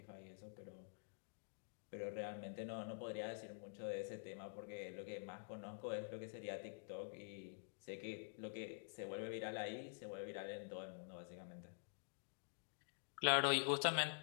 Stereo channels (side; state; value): right; silent; digital silence